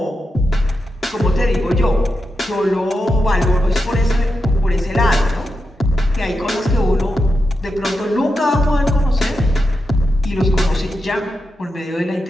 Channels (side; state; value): both; normal; correlation 0.87